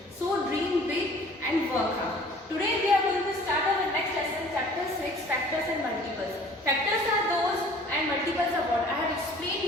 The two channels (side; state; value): both; normal; correlation 0.51